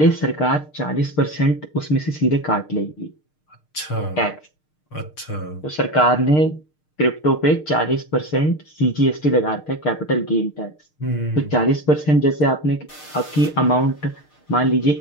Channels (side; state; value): right; late; 6.6 ms